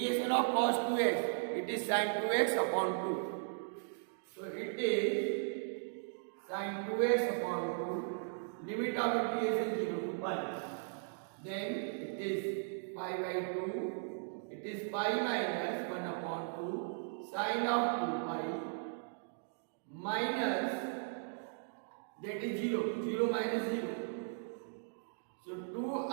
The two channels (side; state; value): left; silent; digital silence